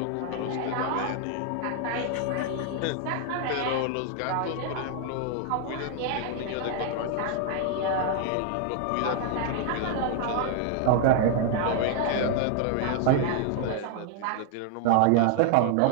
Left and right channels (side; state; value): both; different; correlation 0.00